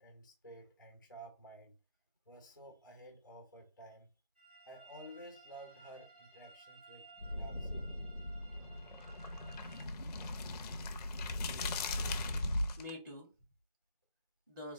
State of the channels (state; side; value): inverted; both; correlation -0.74